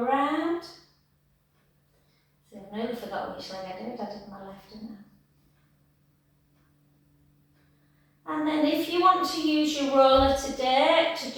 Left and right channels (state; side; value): identical; both; correlation 1.00